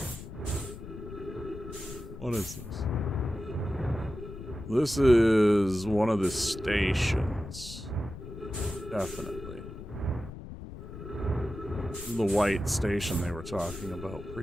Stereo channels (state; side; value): noise; left; rumble, 11 dB below the sound